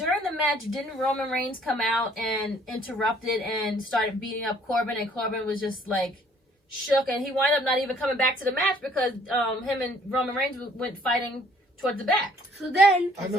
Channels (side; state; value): both; normal; correlation 0.60